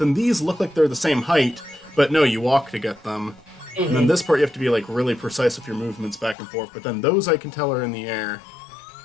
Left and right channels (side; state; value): right; drops out; at 6.4 s